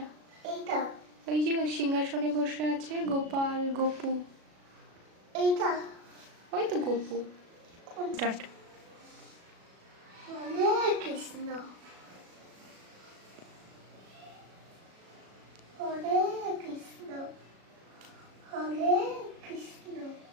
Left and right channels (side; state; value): left; late; 36 ms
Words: এইটা ওই যে সিংহাসনে বসে আছে গোপাল গোপু। এইটা ওই তো গোপু। কোন? স্টার্ট। হরে কৃষ্ণ হরে কৃষ্ণ হরে কৃষ্ণ